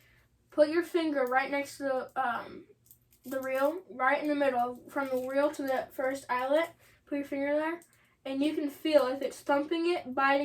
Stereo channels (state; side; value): identical; both; correlation 1.00